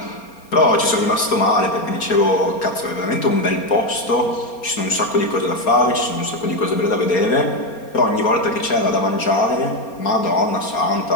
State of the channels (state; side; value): late; right; 4.3 ms